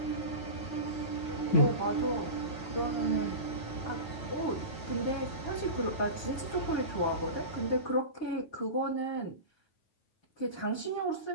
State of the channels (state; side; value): late; right; 9.2 ms